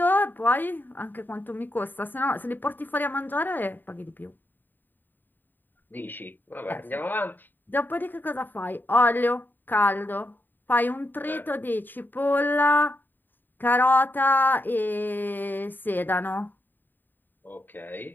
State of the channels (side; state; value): right; late; 0.091 ms